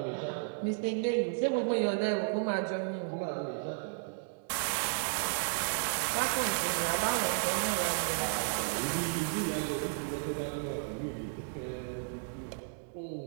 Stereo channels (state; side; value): silent; left; digital silence